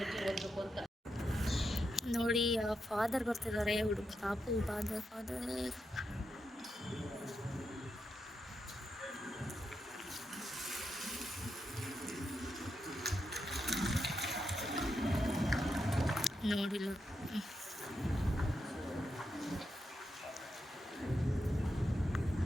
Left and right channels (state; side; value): normal; both; correlation 0.85